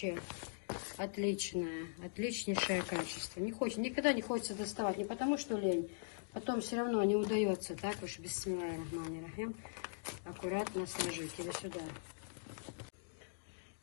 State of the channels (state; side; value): silent; right; digital silence